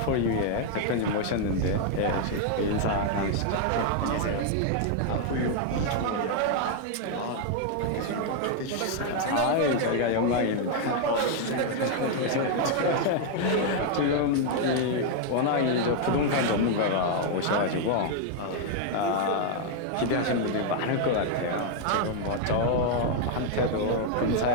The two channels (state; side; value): different; both; correlation 0.00